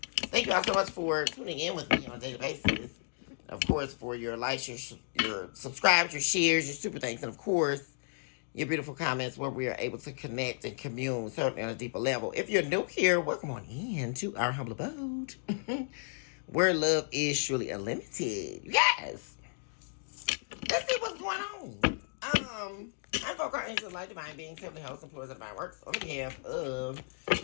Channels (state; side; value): silent; right; digital silence